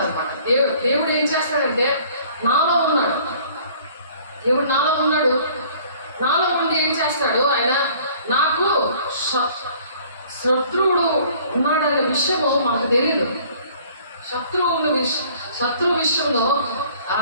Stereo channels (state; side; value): inverted; both; correlation -0.54